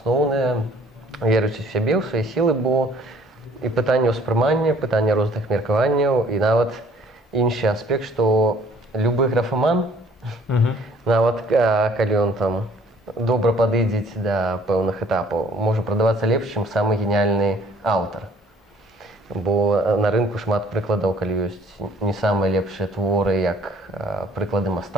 верыць у сябе, у свае сілы, бо і пытанне ўспрымання, пытанне розных меркаванняў, і нават іншы аспект, што любы графаман, нават калі ён там добра падыдзець да пэўных этапаў, можа прадавацца лепш, чым самы геніяльны аўтар. Бо на рынку шмат прыкладаў, калі ёсць не самыя лепшыя творы, як прыклады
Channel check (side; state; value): both; normal; correlation 0.57